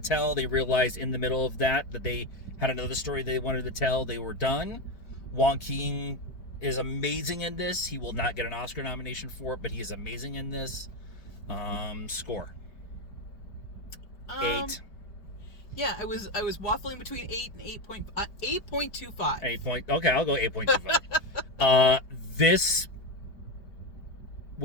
They realized in the middle of that they had another story they wanted to tell. They were done. Joaquin is amazing in this. He will not get an Oscar nomination for it, but he is amazing in this. Score. 8. Yeah, I was waffling between 8 and 8.25. 8 okay, I'll go 8.25. This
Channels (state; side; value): late; right; 4.6 ms